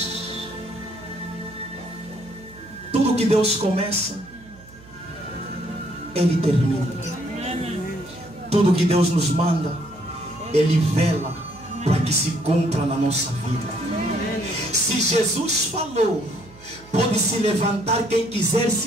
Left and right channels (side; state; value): right; noise; hum, 22 dB below the sound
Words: Tudo que Deus começa, Ele termina. Tudo que Deus nos manda, Ele vela para que se cumpra na nossa vida. Se Jesus falou, pode se levantar quem quiser